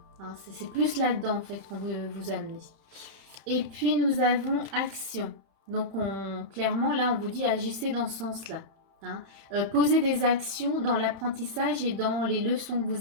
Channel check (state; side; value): late; left; 30 ms